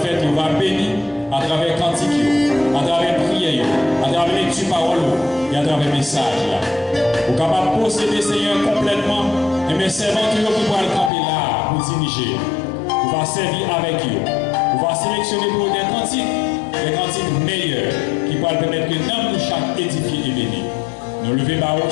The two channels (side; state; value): right; drops out; at 11.1 s